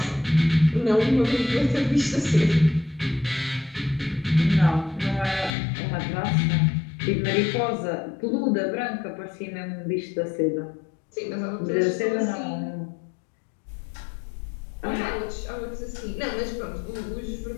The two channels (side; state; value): right; drops out; at 5.5 s